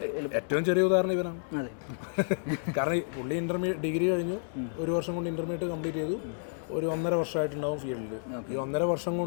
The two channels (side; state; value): right; silent; digital silence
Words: ഏറ്റവും ചെറിയ ഉദാഹരണം ഇവനാണ്. കാരണം പുള്ളി ഡിഗ്രി കഴിഞ്ഞു, 1 വർഷം കൊണ്ട് ഇൻ്റർമീഡിയറ്റ് കംപ്ലീറ്റ് ചെയ്തു. ഒരു 1.5 വർഷമായിട്ടുണ്ടാവും ഫീൽഡിൽ. ഈ 1.5 വർഷം